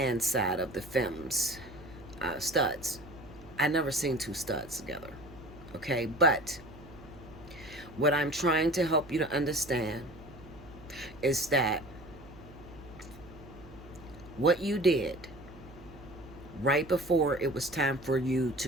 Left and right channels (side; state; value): right; noise; hum, 19 dB below the sound